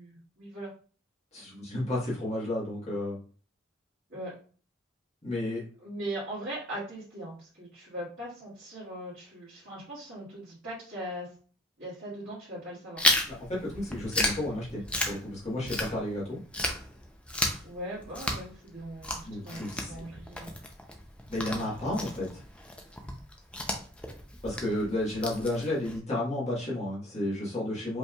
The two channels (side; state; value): both; normal; correlation 0.46